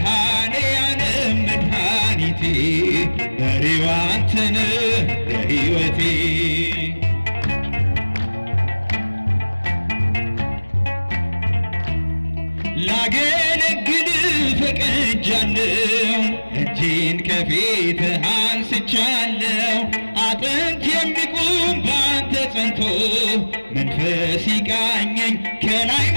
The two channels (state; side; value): inverted; both; correlation -1.00